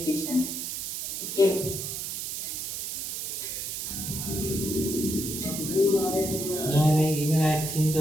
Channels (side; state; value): right; noise; hiss, 4 dB below the sound